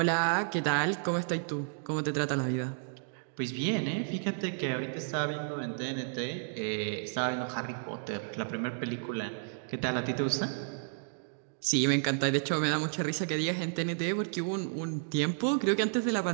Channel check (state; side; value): silent; left; digital silence